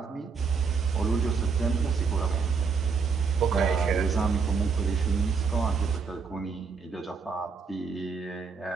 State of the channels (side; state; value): left; quieter; 5.4 dB